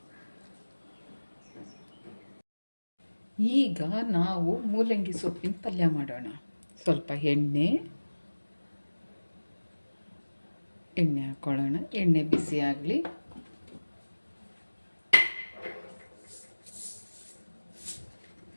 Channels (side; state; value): both; inverted; correlation -1.00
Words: ಈಗ ನಾವು ಮೂಲಂಗಿ ಸೊಪ್ಪಿನ ಪಲ್ಯ ಮಾಡೋಣ. ಸ್ವಲ್ಪ ಎಣ್ಣೆ ಹಾಕ್ಕೊಳ್ಳೋಣ. ಎಣ್ಣೆ ಬಿಸಿ ಆಗಲಿ.